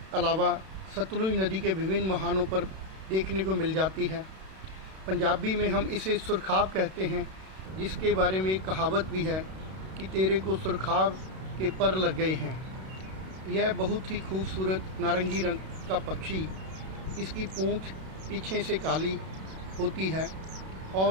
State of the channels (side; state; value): left; late; 32 ms